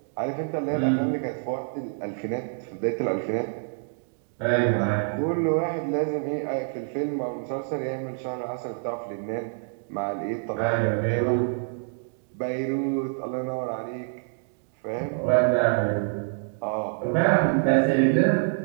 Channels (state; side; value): silent; left; digital silence